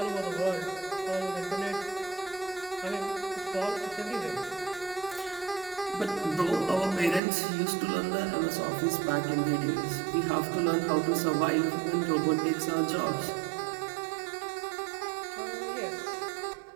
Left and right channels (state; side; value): drops out; left; at 7.2 s